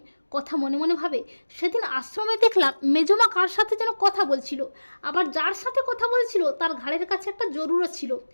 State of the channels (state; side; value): inverted; both; correlation -1.00